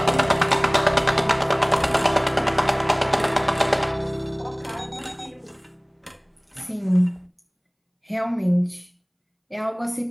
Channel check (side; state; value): both; identical; correlation 1.00